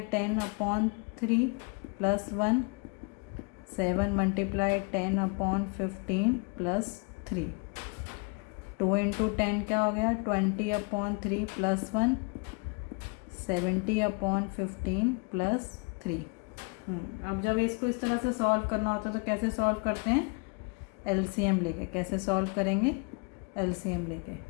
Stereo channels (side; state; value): right; quieter; 33.4 dB